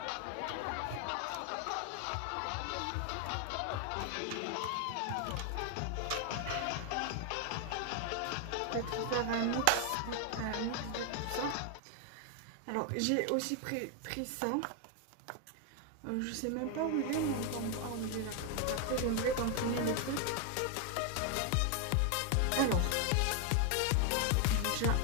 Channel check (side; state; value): both; different; correlation 0.01